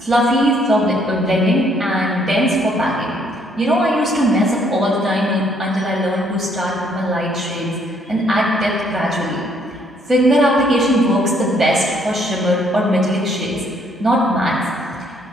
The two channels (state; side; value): normal; both; correlation 0.67